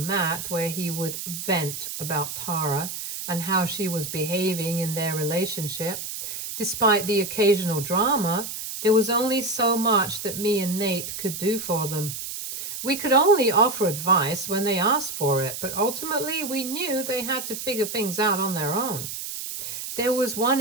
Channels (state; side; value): noise; right; hiss, 7 dB below the sound